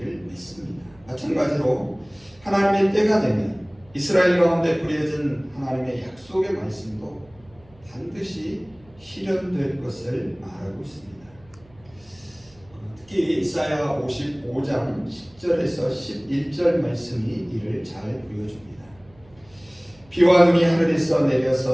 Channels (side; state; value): right; noise; hum, 28 dB below the sound